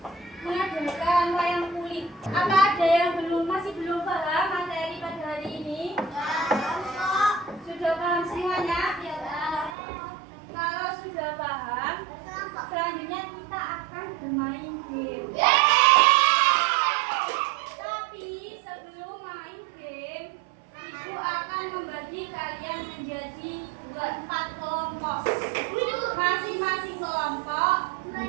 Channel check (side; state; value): left; drops out; at 9.8 s